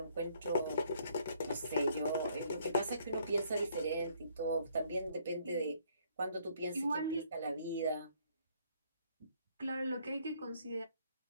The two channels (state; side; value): inverted; both; correlation -0.65